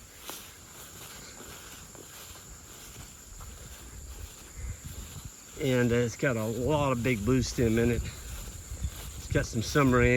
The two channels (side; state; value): both; identical; correlation 1.00